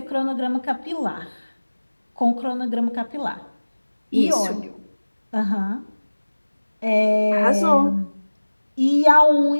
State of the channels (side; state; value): both; inverted; correlation -1.00